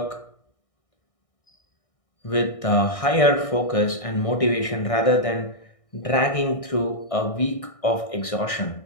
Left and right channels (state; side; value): late; right; 1.6 ms